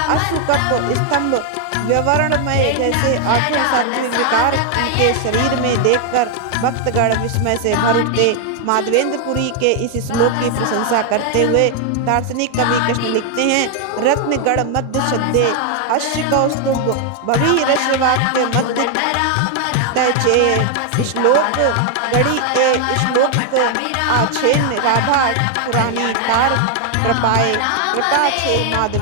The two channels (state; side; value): different; both; correlation 0.00